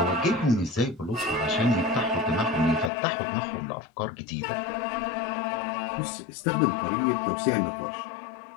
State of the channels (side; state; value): right; drops out; at 2.9 s